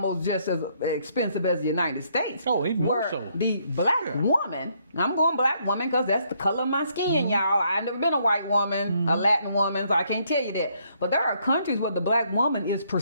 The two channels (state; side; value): inverted; both; correlation -0.70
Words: just as expensive as the United States. Oh, even more so. The black woman, I'm going black woman because that's the color of my skin, y'all. I've never been a white woman, a Latin woman, so I can't tell you that. But there are countries where the black woman is